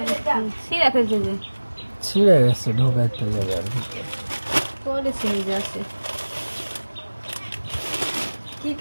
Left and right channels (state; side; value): inverted; both; correlation -1.00